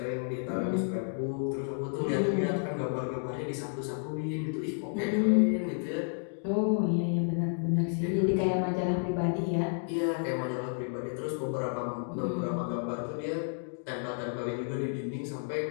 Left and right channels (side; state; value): right; silent; digital silence